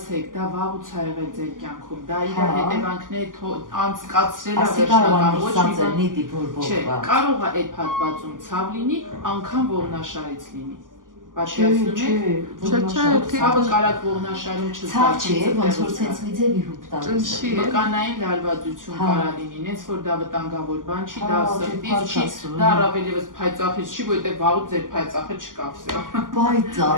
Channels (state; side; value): late; left; 0.89 ms